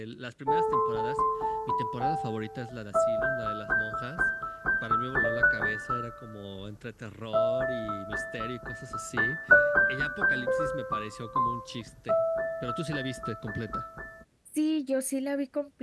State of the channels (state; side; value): identical; both; correlation 1.00